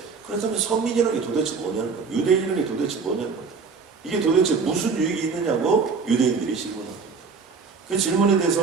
그렇다면 선민이라는 게 도대체 뭐냐는 거예요. 유대인이라는 게 도대체 뭐냐는 거예요. 이게 도대체 무슨 유익이 있느냐고 유대인들이 질문합니다. 그 질문에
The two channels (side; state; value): left; quieter; 5.0 dB